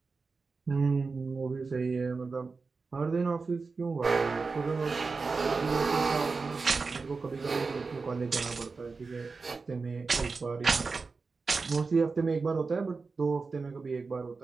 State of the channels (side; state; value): left; quieter; 4.3 dB